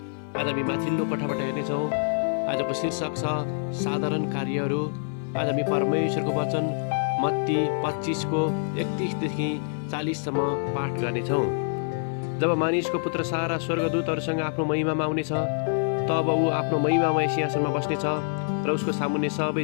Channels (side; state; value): right; silent; digital silence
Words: आज हामी माथिल्लो कोठाबाट हेर्नेछौँ। आजको शीर्षक छ साधारण कार्यहरू। आज हामी परमेश्वरको वचन मत्ती 25 को 31 देखि 40 सम्म पाठ गर्नेछौँ। जब मानिसको पुत्र सारा स्वर्गदूतहरूसँग आफ्नो महिमामा आउनेछ, तब ऊ आफ्नो महिमामय सिंहासनमा बस्नेछ र उसको सामुन्ने